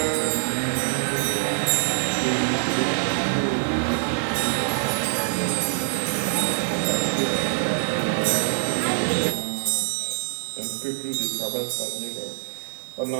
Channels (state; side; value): silent; left; 60 dB below the other